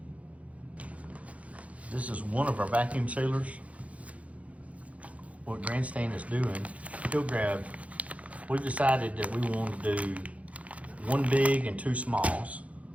This is one of our vacuum sealers. What Grandstand is doing, we've decided that we want to do 1 big and 2 smalls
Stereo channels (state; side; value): late; left; 0.066 ms